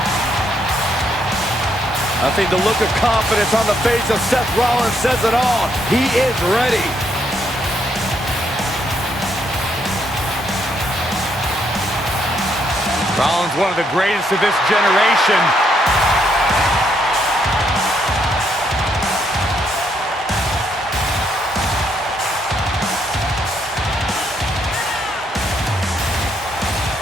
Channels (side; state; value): both; normal; correlation 0.74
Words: I think the look of confidence on the face of Seth Rollins says it all. He is ready. Rollins, one of the greatest of this generation.